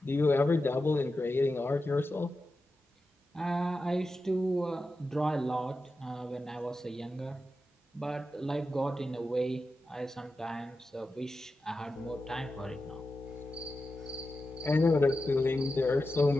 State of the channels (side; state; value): both; normal; correlation 0.91